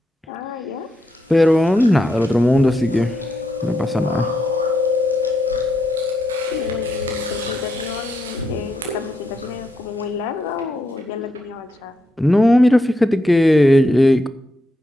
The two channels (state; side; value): normal; both; correlation 0.83